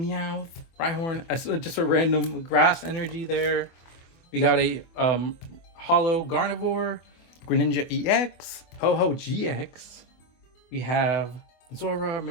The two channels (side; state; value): right; late; 24 ms